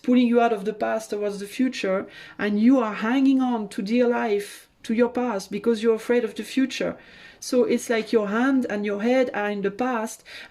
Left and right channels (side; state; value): both; identical; correlation 1.00